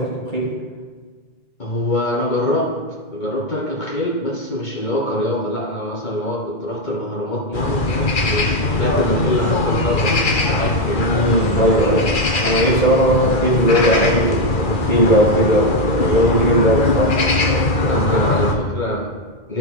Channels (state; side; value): late; right; 2.4 ms